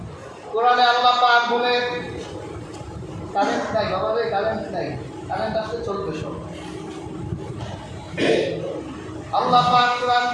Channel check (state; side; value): identical; both; correlation 1.00